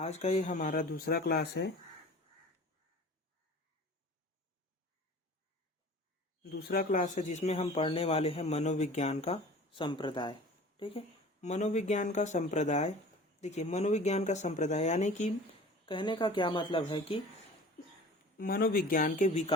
का ये हमारा दूसरा क्लास है। जिसमें हम पढ़ने वाले हैं मनोविज्ञान का संप्रदाय। ठीक है, मनोविज्ञान का संप्रदाय। देखिए, मनोविज्ञान का संप्रदाय यानी कि कहने का क्या मतलब है कि मनोविज्ञान के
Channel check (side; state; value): both; normal; correlation 0.42